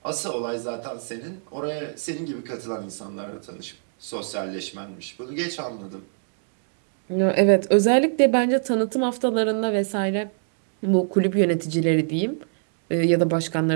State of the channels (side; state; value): left; silent; digital silence